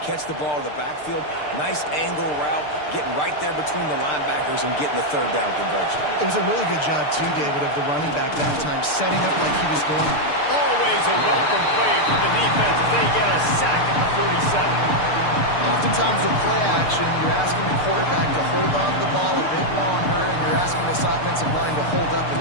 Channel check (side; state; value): right; late; 6.7 ms